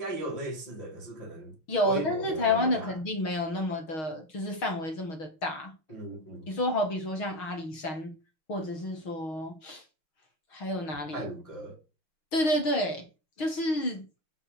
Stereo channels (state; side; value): late; right; 6.4 ms